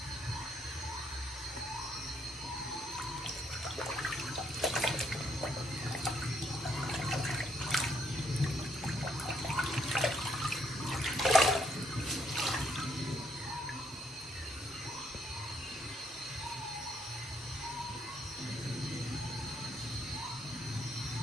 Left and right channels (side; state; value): both; normal; correlation 0.72